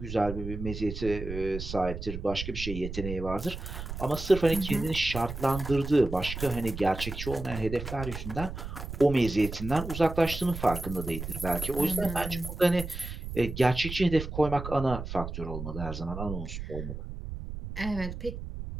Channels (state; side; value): noise; right; rumble, 8 dB below the sound